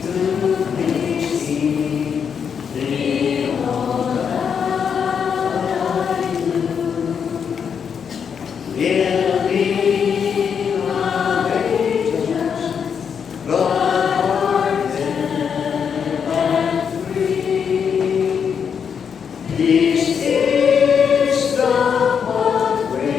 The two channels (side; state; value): right; quieter; 7.0 dB